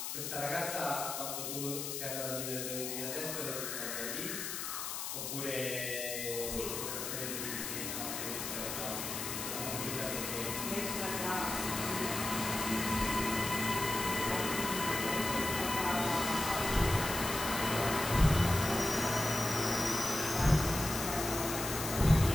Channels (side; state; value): left; noise; hiss, 4 dB below the sound